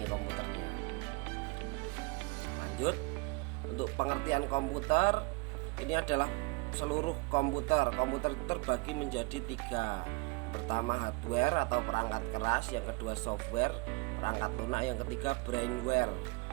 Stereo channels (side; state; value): left; quieter; 26.9 dB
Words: komputernya. Lanjut, untuk pengertian komputer, ini adalah seluruh komputer. Komputer itu terbagi menjadi 3. Pertama hardware atau perangkat keras, yang kedua software, perangkat lunak, yang ketiga brainware.